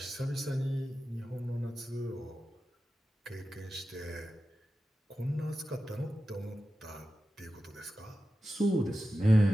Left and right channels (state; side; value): normal; both; correlation 0.93